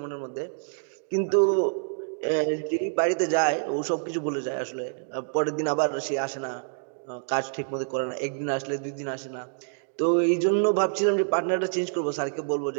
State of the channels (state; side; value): silent; left; digital silence